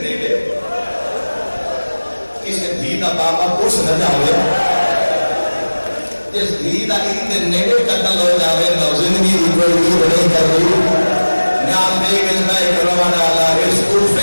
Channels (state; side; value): inverted; both; correlation -1.00